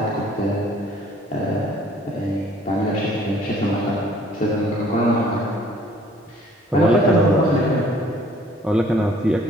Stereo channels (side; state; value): both; normal; correlation 0.57